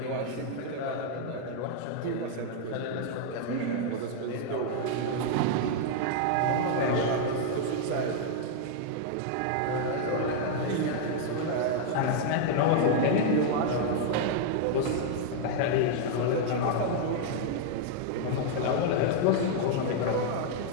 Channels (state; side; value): different; both; correlation 0.00